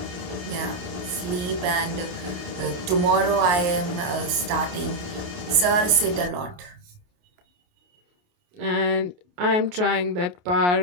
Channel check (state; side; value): late; left; 28 ms